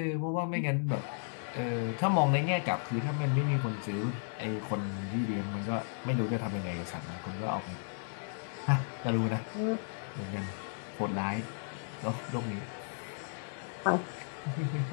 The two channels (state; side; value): silent; right; digital silence